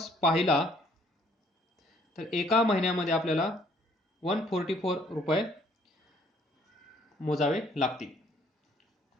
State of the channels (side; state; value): both; normal; correlation 0.63